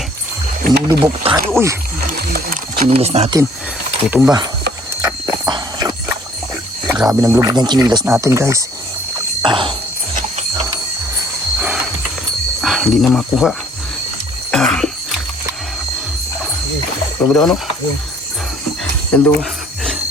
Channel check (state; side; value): normal; both; correlation 0.58